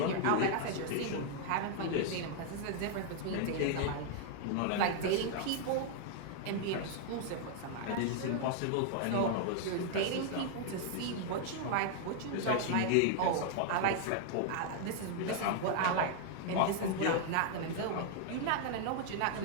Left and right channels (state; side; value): different; both; correlation 0.00